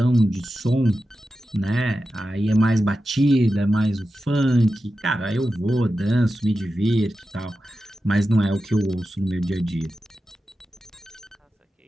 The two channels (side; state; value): both; normal; correlation 0.92